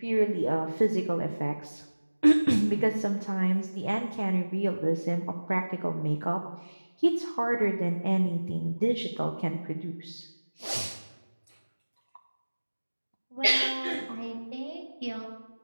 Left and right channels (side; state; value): both; inverted; correlation -1.00